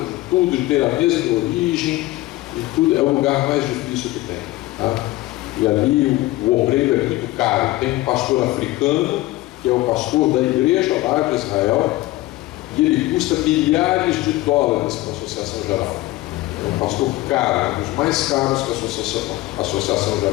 tudo, de ter a mesma origem, e tudo, é o lugar mais difícil que tem. Tá? E ali o obreiro é muito caro. Tem um pastor africano, que é o pastor da igreja lá de Israel, e ele custa milhares de dólares para a Associação Geral. É um pastor caro, um dos mais caros que a Associação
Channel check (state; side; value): quieter; right; 18.1 dB